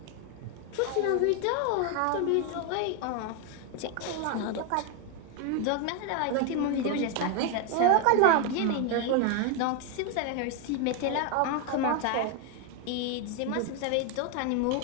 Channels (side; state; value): both; different; correlation 0.01